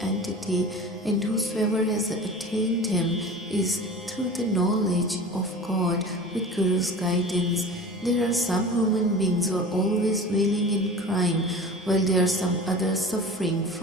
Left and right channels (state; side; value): normal; both; correlation 0.37